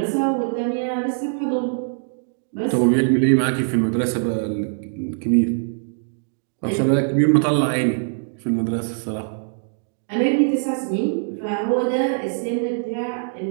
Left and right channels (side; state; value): left; silent; digital silence